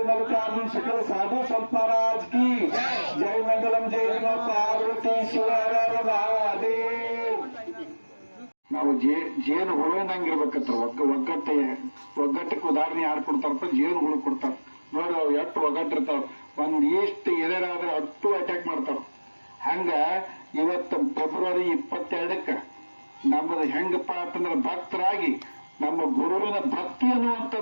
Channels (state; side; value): inverted; both; correlation -1.00